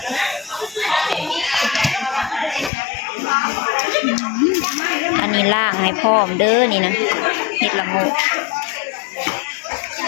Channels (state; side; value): drops out; right; at 2.7 s